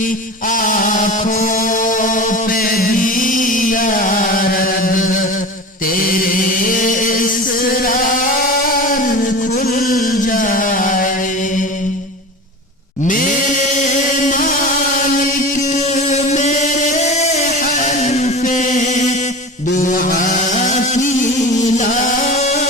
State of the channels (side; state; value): both; normal; correlation 0.31